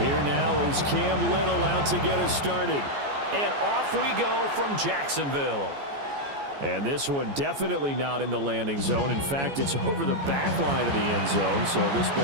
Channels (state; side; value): late; left; 14 ms